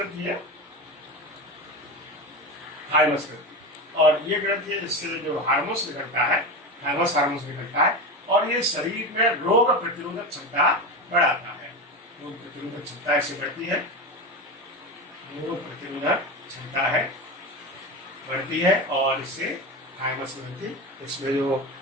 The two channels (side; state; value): both; normal; correlation 0.22